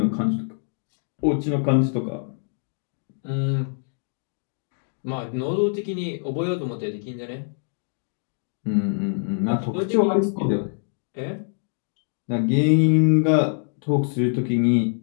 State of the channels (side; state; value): right; silent; digital silence